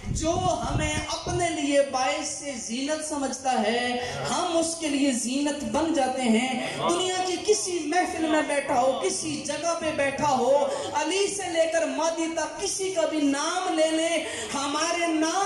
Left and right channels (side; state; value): both; identical; correlation 1.00